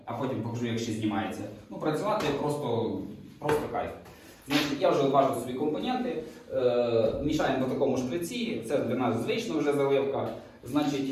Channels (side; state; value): both; identical; correlation 1.00